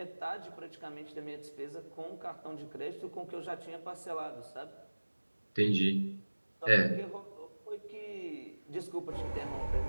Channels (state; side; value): inverted; both; correlation -1.00